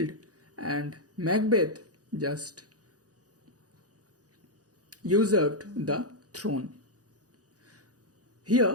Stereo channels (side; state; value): left; late; 0.67 ms